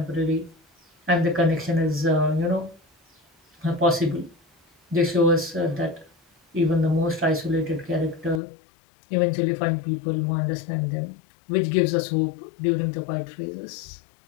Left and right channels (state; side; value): drops out; right; at 8.4 s